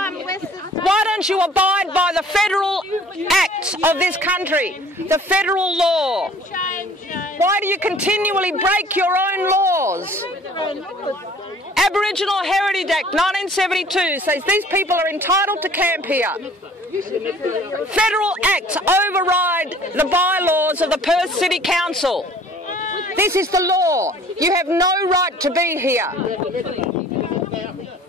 Why don't you abide by the federal acts of this country, the federal law? Why do you continually break your own laws? Aboriginal Heritage Act 1972 says these people are entitled to camp here. Federal acts override the bylaws of the Perth City Council. This is the law. You have no right to be here.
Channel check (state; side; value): normal; both; correlation 0.52